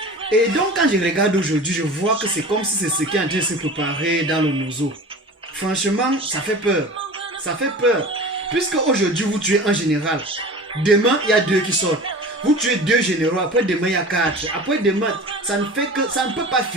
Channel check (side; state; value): both; normal; correlation 0.37